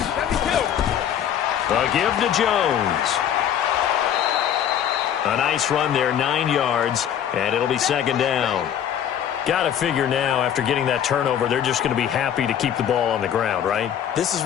A give to Jones. A nice run there, 9 yards, and it'll be 2nd down. Got to figure now, after getting that turnover, they're just going to be happy to keep the ball on the ground, right? This is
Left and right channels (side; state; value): right; quieter; 9.6 dB